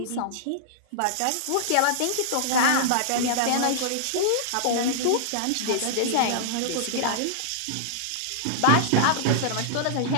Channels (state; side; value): different; both; correlation -0.02